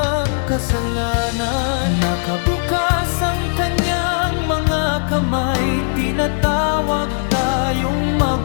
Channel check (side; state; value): right; silent; digital silence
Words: kasalanan. Nakabukas ang kanyang mga kamay, tinatawag tayong